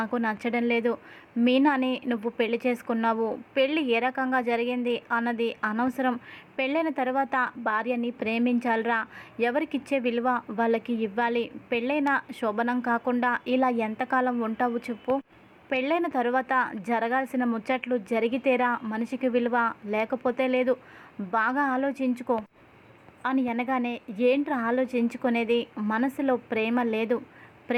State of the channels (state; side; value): identical; both; correlation 1.00